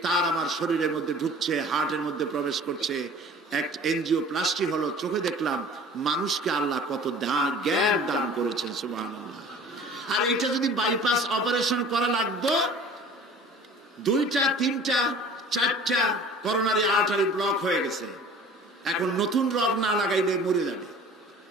তার আমার শরীরের মধ্যে ঢুকছে, হার্টের মধ্যে প্রবেশ করছে। এক এনজিওপ্লাস্টি হলো। চোখে দেখলাম মানুষকে আল্লাহ কত জ্ঞান দান করেছেন, সুবহানাল্লাহ। আর এটা যদি বাইপাস অপারেশন করা লাগতো, 2টা 3টা 4টা করোনারি আর্টারি ব্লক হয়ে গেছে। এখন নতুন রগ না লাগাইলে মরে যাবে।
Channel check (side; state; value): both; normal; correlation 0.45